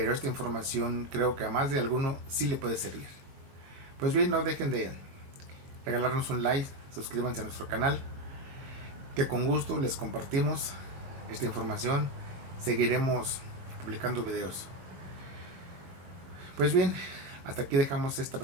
esta información creo que a más de alguno sí le puede servir. Pues bien, no dejen de regalarnos un like, suscríbanse a nuestro canal, que con gusto les compartimos esta información. Seguiremos publicando videos. Pues bien, hasta aquí dejamos esta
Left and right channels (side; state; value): left; late; 22 ms